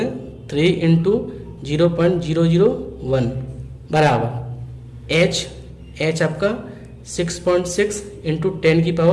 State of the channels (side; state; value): both; identical; correlation 1.00